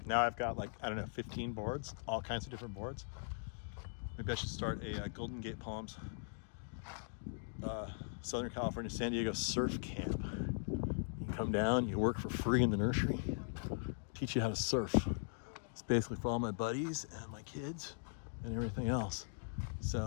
Now I've got 15 boards, all kinds of different boards. Maybe I should start a Golden Gate Palms, Southern California, San Diego surf camp. You come down, you work for free in the nursery, teach you how to surf. It's basically for all my buddies and my kids and everything else.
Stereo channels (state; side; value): silent; right; digital silence